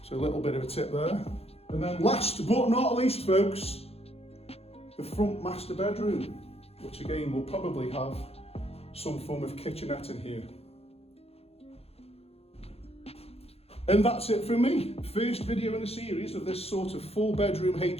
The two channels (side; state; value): right; late; 0.29 ms